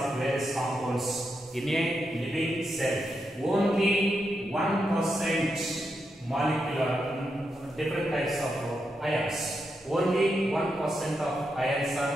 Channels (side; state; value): both; normal; correlation 0.84